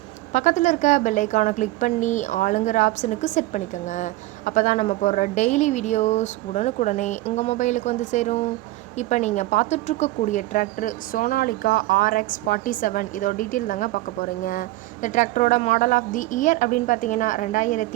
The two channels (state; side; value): quieter; left; 18.0 dB